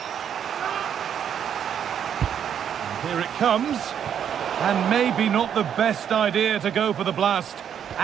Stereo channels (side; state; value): left; quieter; 8.7 dB